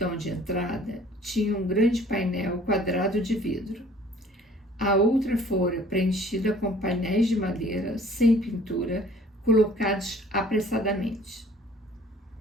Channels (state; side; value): normal; both; correlation 0.53